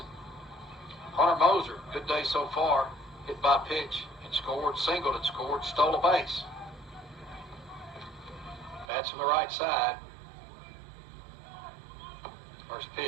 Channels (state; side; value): drops out; left; at 8.8 s